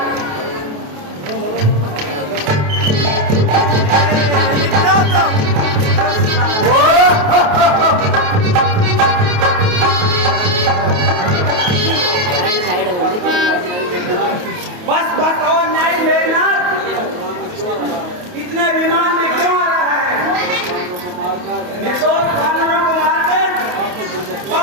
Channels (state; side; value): late; left; 28 ms